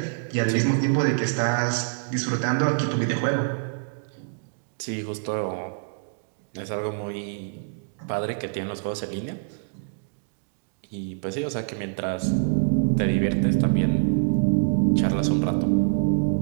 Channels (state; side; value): silent; left; digital silence